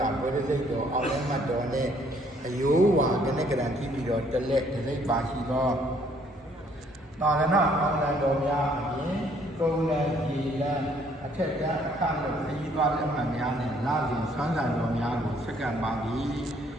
ဘောဓိစိတ်တော်အောင်လည်းမှတ်တော်နှင့်အယောဝါကနဲ့ကံရှိပြီးတော်တက်လက်ဒီပါရှိသောသာရဏအောင်လံတော်များအပြင်ကုံလံဒီလံအထက်ကြားအခလို့ခရီးသွားလက်မှတ်များနဲ့လာစဉ်ဆွမ်းဆံတော်များကိုစက္ကန့်ပါသည်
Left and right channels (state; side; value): normal; both; correlation 0.64